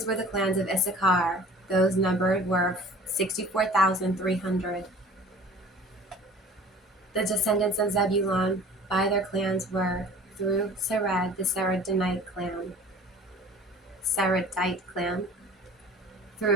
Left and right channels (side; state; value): both; normal; correlation 0.46